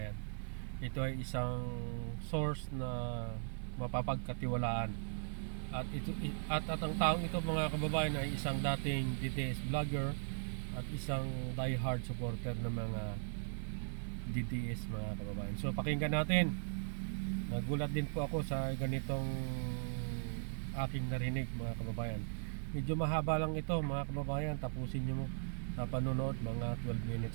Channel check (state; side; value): silent; left; digital silence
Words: Ito ay isang source na mapapagkatiwalaan. At ang taong ito mga kababayan ay isang dating DDS vlogger at isang diehard supporter ng mga DDS mga kababayan. So pakinggan natin. Nagulat din po ako sa ganitong aking narinig mga kababayan. Medyo mahaba lang ito mga kababayan. Tapusin nyo mo sa panonood, mga 12